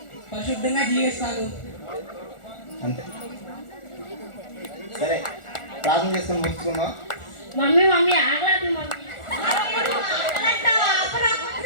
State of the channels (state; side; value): late; right; 1.4 ms